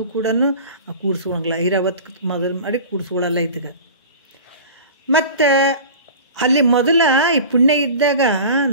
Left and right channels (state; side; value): inverted; both; correlation -0.37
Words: ಕೂಡ ಕೂಡಿಸ್ಕೊಳಂಗಿಲ್ಲ. ಐರಾವತ್ತು ಮೊದಲು ಮಾಡಿ ಕೂಡಿಸ್ಕೊಳ್ಳಲ್ಲ ಇದಕ್ಕೆ. ಮತ್ತು ಅಲ್ಲಿ ಮೊದಲ ಈ ಪುಣ್ಯ ಇದ್ದಾಗ